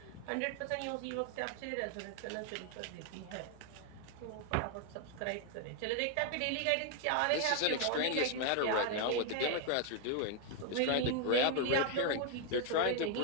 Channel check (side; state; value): both; different; correlation 0.00